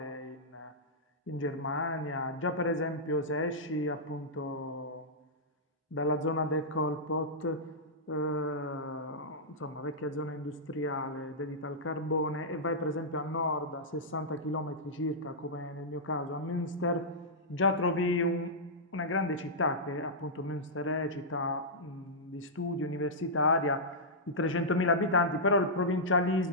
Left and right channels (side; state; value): both; normal; correlation -0.12